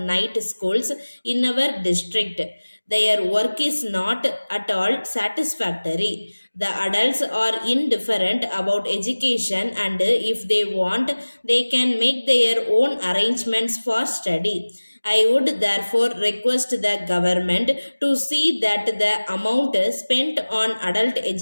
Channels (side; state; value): both; inverted; correlation -1.00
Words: schools in our district, their work is not at all satisfactory. The adults are indifferent about education and if they want, they can make their own arrangements for study. I would therefore request the government to see that the amount spent on adult